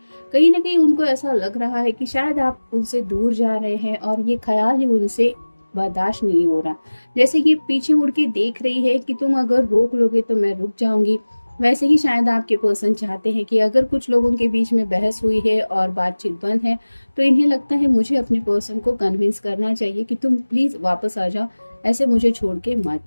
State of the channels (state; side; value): inverted; both; correlation -1.00